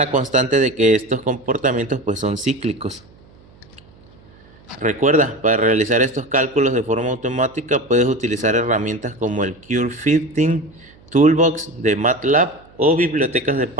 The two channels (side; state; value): right; noise; hum, 27 dB below the sound